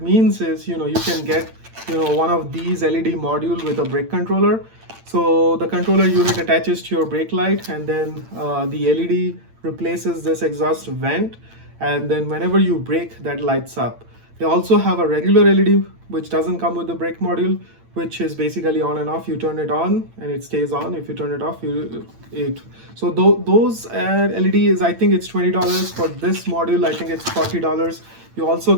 means is, you can get one of these LED module with a brake controller. So the controller unit attaches to your brake light, and then the LED replaces this exhaust vent, and then whenever you brake, that lights up. They also have a regular LED which doesn't come with the brake module, which is basically on and off. You turn it on and it stays on. If you turn it off, so those LED is, I think it's $20. For this module, I think it's $40. You also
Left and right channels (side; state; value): left; late; 8.8 ms